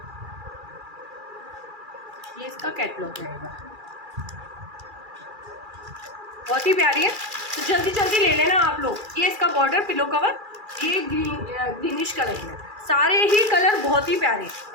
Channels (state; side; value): late; left; 2.4 ms